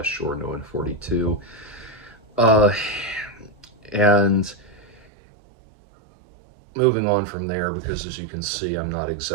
Uh, and moving on from there, because as you can see, I'm not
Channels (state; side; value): drops out; left; at 5.1 s